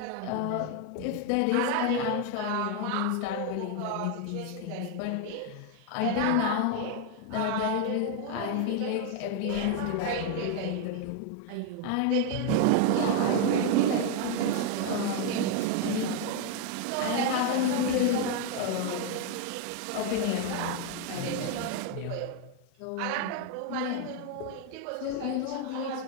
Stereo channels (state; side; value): different; both; correlation 0.00